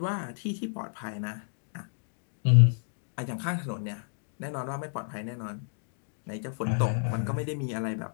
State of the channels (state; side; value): silent; right; digital silence